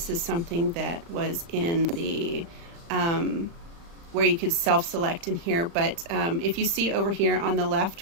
is something that was in the where you could self-select in here, but if you see over here on the left,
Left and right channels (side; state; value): left; late; 35 ms